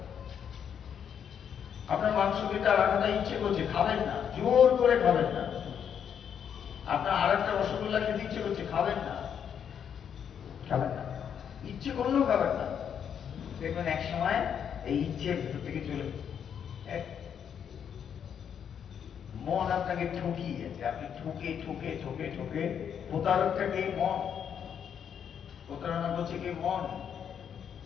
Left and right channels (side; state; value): right; quieter; 8.2 dB